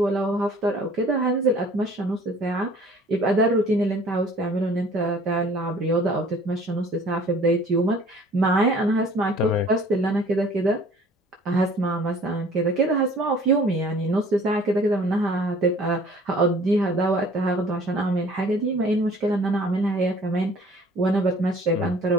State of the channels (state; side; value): normal; both; correlation 0.52